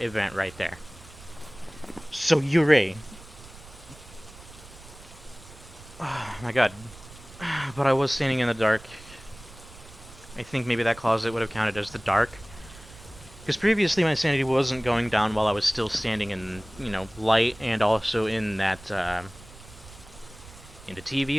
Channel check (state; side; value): noise; right; rumble, 19 dB below the sound